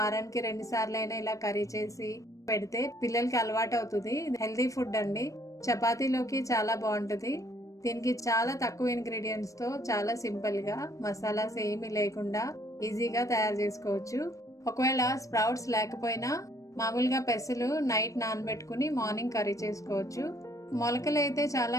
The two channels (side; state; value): right; late; 0.16 ms